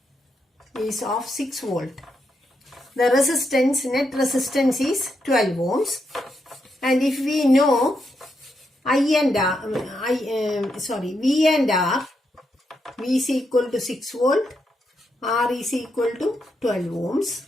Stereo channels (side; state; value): both; normal; correlation 0.82